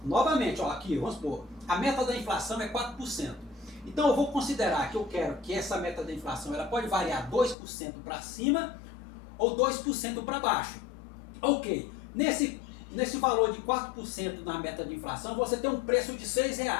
ó, aqui, vamos supor, a meta da inflação é 4%. Então eu vou considerar que eu quero que essa meta da inflação ela pode variar 2% para cima ou 2% para baixo. Ok, nesse valor de 4% na meta de inflação, você tem um preço de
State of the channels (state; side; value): drops out; right; at 7.6 s